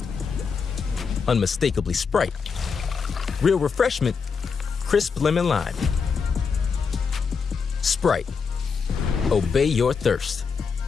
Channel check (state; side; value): quieter; right; 5.6 dB